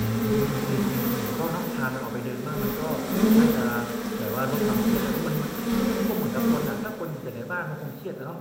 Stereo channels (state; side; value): identical; both; correlation 1.00